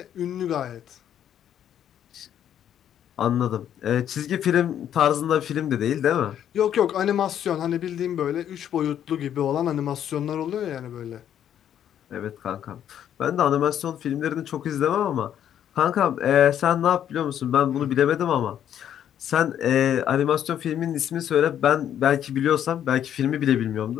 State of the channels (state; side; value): quieter; right; 10.0 dB